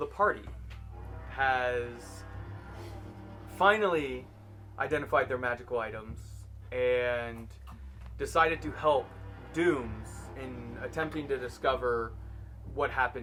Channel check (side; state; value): both; identical; correlation 1.00